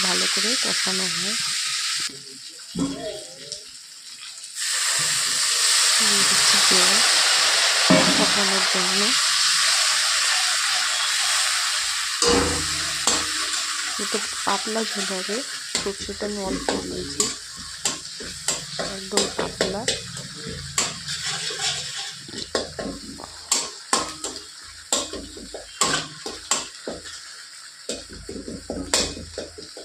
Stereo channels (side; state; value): both; identical; correlation 1.00